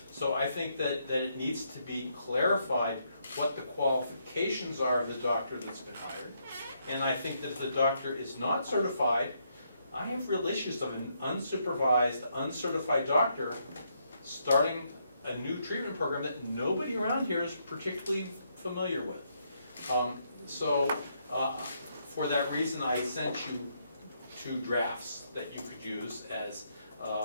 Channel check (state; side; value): inverted; both; correlation -0.76